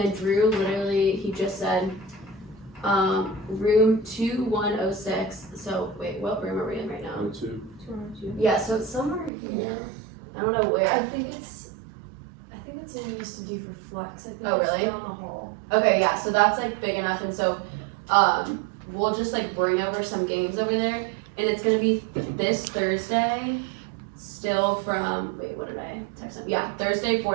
Drew literally, he just said room 2106. So wait, what room are we in right now? 2. Yeah, so it's somewhere here. I don't know where. I think it's what we used to do for flex. I think Oh, it's really? down the hall. Okay, yeah, so that's like big enough, and so we'll just like bring over some games over there, and it's gonna be this Thursday, still from, wait, what did I text them? Yeah, Thursday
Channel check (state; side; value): drops out; left; at 9.3 s